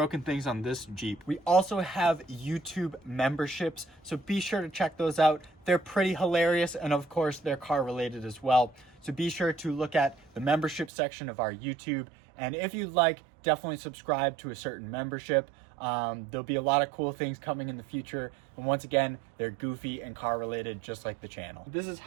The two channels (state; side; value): drops out; left; at 10.9 s